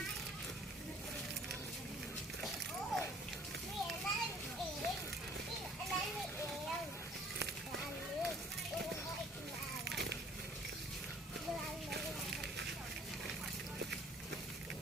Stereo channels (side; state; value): both; normal; correlation 0.55